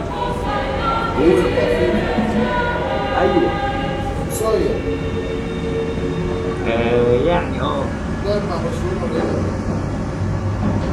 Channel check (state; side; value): identical; both; correlation 1.00